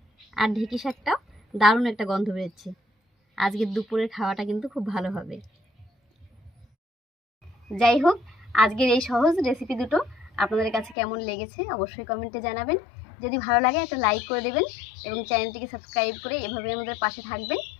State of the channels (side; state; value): right; drops out; at 11.0 s